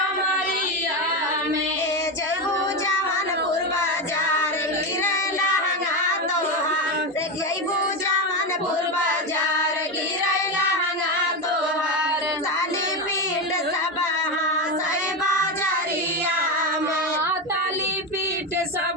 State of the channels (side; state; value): both; normal; correlation 0.14